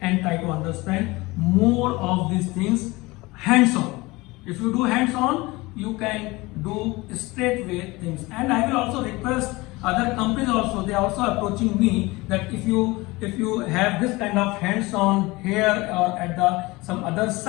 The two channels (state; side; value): quieter; right; 22.1 dB